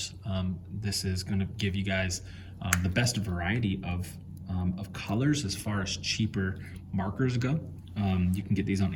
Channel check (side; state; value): both; identical; correlation 1.00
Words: This is gonna give you guys the best variety of colors as far as cheaper markers go. You can get these on